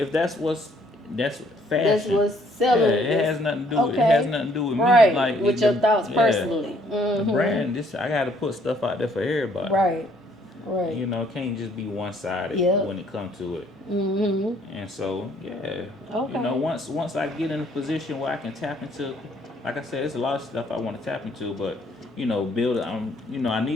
that's what's fashion. That's what's selling. Yeah, it has nothing to do with it has nothing to do with me. Like with your thoughts personally. The brand, I gotta put stuff out there for everybody. Right. You know, it can't just be one sided when it comes to it. And so, you know, once I get in a position where I can tap into, like I said, there's a lot of stuff I want to tap into, but you know, build. You know,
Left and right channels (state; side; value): normal; both; correlation 0.64